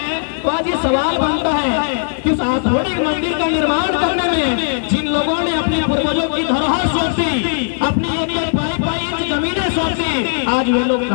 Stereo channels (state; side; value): silent; right; digital silence